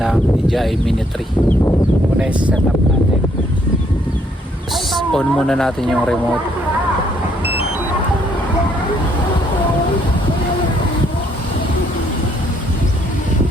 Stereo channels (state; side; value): normal; both; correlation 0.68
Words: DJI Mini 3. Muna i-set up natin. On muna natin yung remote.